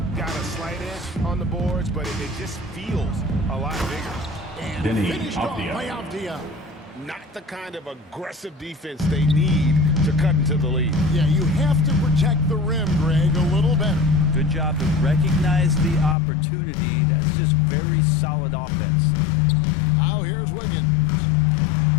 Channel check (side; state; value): right; drops out; at 16.2 s